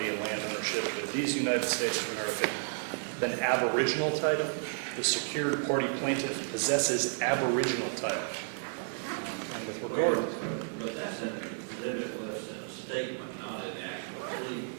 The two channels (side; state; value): left; silent; digital silence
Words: and land ownership of these United States of America than aboriginal title. The secured party plaintiff possesses aboriginal title. Well, but that's in an exhibit list in a statement, not in the actual pleading.